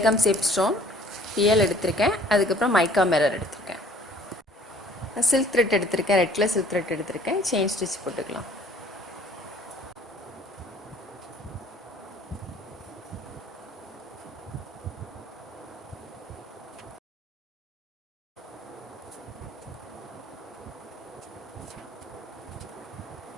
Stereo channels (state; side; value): normal; both; correlation 0.55